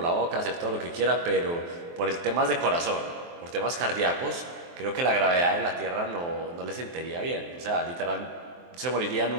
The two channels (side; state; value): left; late; 23 ms